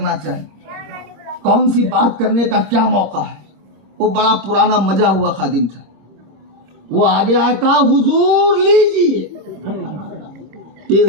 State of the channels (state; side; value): late; left; 26 ms